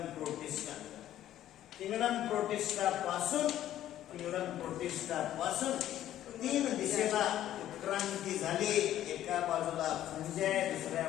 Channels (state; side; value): quieter; right; 12.4 dB